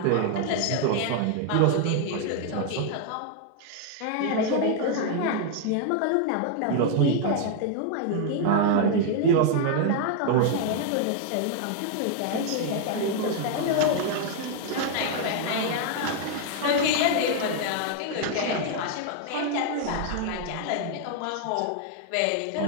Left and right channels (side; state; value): both; different; correlation 0.00